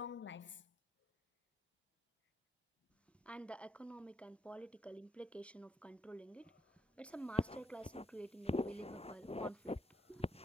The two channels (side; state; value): both; normal; correlation 0.78